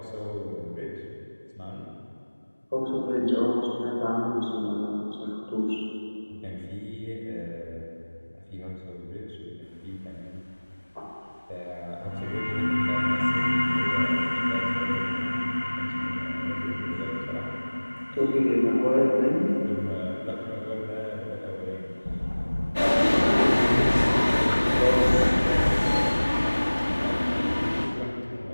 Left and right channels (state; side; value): inverted; both; correlation -1.00